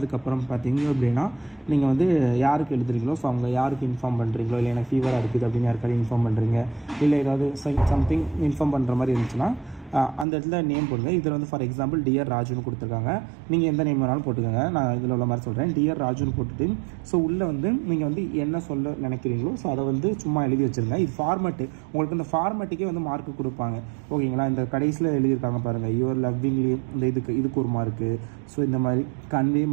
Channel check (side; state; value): left; drops out; at 10.2 s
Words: பார்த்தீங்க அப்படின்னா நீங்கள் வந்து யாருக்கு எழுதுறீங்களோ, ஸோ அவங்க யாருக்கு இன்ஃபார்ம் பண்ணுறீங்களோ, இல்லை எனக்கு ஃபீவராக இருக்குது அப்படின்னு யாருக்காவது இன்ஃபார்ம் பண்ணுறீங்க, இல்லை ஏதாவது சம்திங் இன்ஃபார்ம் பண்ணுற மாதிரி இருந்துச்சுன்னா அந்த இடத்துல நேம் போடுங்க. இதில் வந்து ஃபார் எக்ஸாம்பிள் டியர் ராஜுன்னு கொடுத்துருக்காங்க. நீங்கள் எந்த நேம் வேணாலும் போட்டுக்கோங்க. நான் இதில் உள்ள மாதிரி சொல்கிறேன், டியர் ராஜுன்னு போட்டுட்டு ஸோ உள்ளே வந்து நீங்கள் வந்து என்ன சொல்ல நினைக்கிறீங்களோ ஸோ அதை வந்து சும்மா எழுதி வச்சுருங்க. இது ஃபார்மேட்டு, உங்களுக்கு இந்த ஃபார்மேட்டுக்கே வந்து மார்க்கு கொடுப்பாங்க. ஓகேங்களா? இந்த கடைசியில் எழுதியிருக்காங்க பாருங்கள், யுவர் லவ்விங்லி, இந்த இதுக்கு ஒரு மார்க்கு. ஸோ இந்த மாதிரி கன்வே